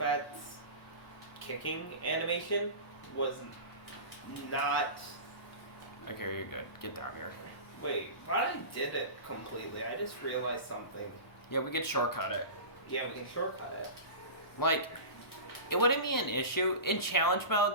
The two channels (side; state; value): right; late; 1.0 ms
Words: kicking animation was not. Okay, you're good. Get down here. Wait, but I did it completely. I just realized something. Yeah, we could shortcut it. Yeah, we can shortcut it. Like, it wouldn't be an issue. In challenge